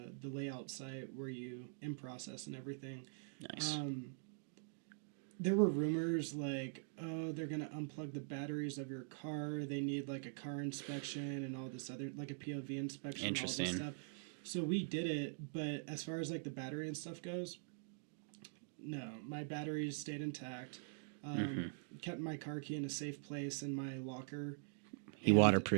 layout site where you in process and everything. Nice. There were rumors like, oh, they're gonna unplug the batteries of your car. They need like a car inspection and all this other, like a POV inspection, all this stuff. So we did it, but as far as like the battery and stuff goes, no, my batteries stayed intact. Kept my car key in a safe place in my locker. You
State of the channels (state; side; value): silent; left; digital silence